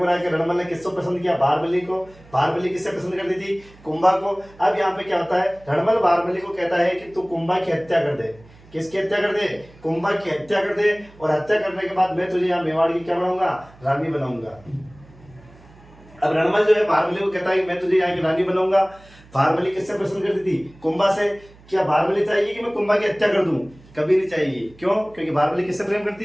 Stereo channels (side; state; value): right; noise; hum, 25 dB below the sound